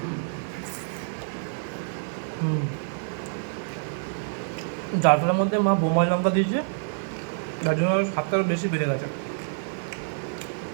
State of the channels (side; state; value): left; silent; 60 dB below the other